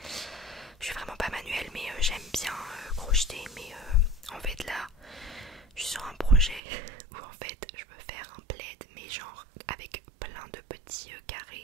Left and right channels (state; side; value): drops out; left; at 6.6 s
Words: Je suis vraiment pas manuelle, mais j'aime bien crocheter. Mais en fait là je suis sur un projet où en fait je veux faire un plaid, mais genre avec plein de petits